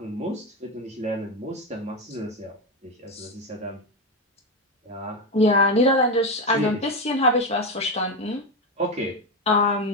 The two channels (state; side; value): normal; both; correlation 0.12